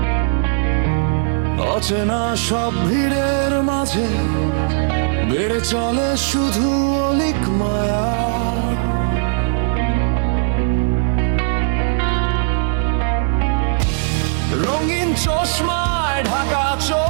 অচেনা সব ভিড়ের মাঝে বেড়ে চলে শুধু অলিক মায়া। রঙিন চশমায় ঢাকা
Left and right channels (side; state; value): left; silent; digital silence